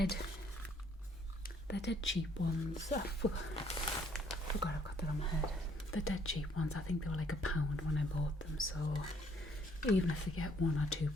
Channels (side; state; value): both; normal; correlation 0.64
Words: They're dead cheap ones. I forgot I've got that on my head. They're dead cheap ones. I think they were like £1 when I bought them, so even if they get 1 or 2